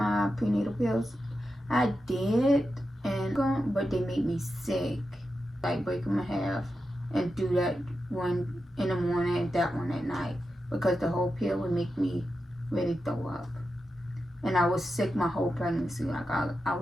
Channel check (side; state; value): both; normal; correlation 0.89